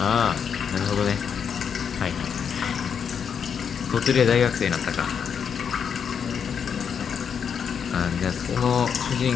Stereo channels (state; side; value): quieter; right; 7.2 dB